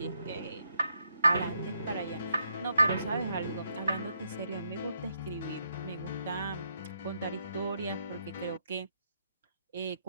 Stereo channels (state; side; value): inverted; both; correlation -0.77